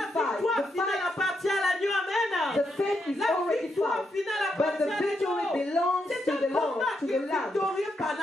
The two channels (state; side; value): normal; both; correlation 0.81